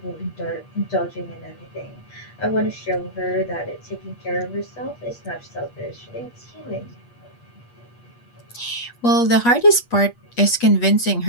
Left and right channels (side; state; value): right; late; 8.4 ms